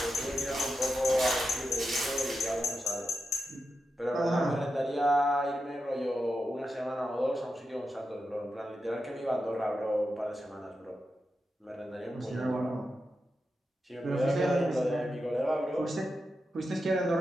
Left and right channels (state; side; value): normal; both; correlation 0.88